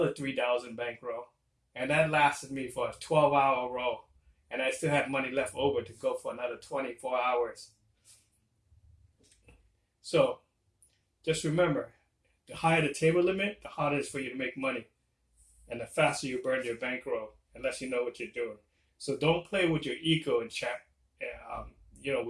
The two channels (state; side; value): identical; both; correlation 1.00